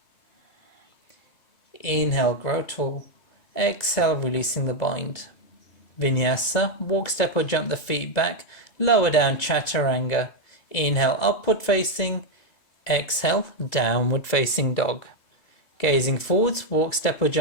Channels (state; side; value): late; right; 2.2 ms